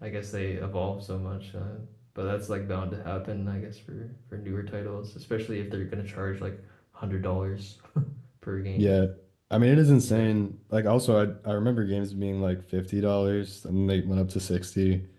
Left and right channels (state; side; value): identical; both; correlation 1.00